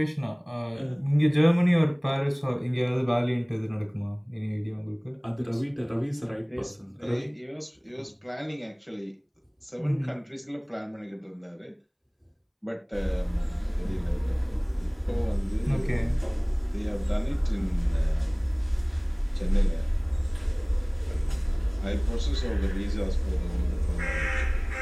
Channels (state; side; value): identical; both; correlation 1.00